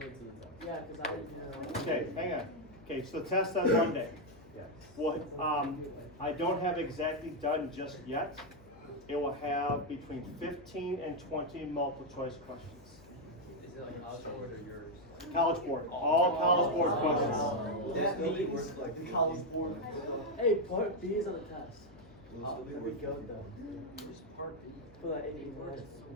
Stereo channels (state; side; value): noise; left; hum, 23 dB below the sound